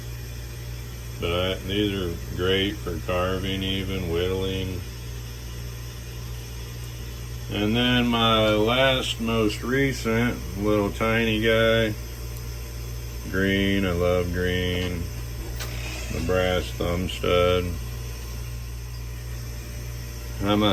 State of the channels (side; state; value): both; identical; correlation 1.00